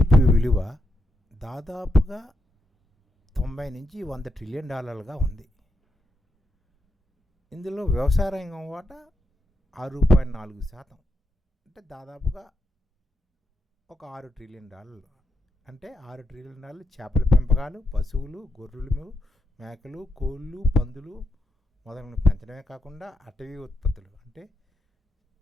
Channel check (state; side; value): normal; both; correlation 0.83